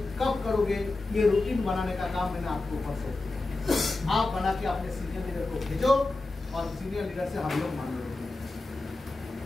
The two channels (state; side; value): quieter; right; 3.2 dB